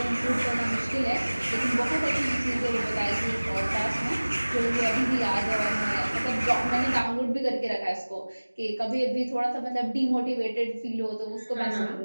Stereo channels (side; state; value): both; inverted; correlation -1.00